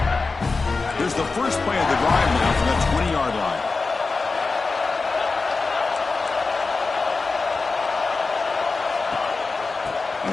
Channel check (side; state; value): right; quieter; 4.1 dB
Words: Here's the first play of the drive now from the 20-yard line.